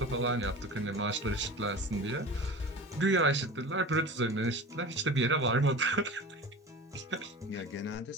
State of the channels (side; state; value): both; normal; correlation 0.34